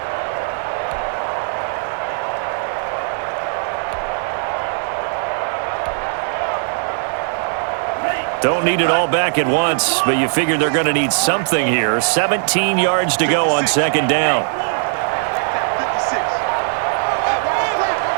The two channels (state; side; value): silent; left; 67 dB below the other